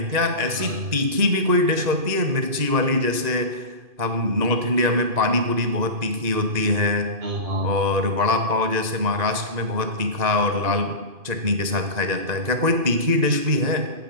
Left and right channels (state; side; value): late; left; 2.5 ms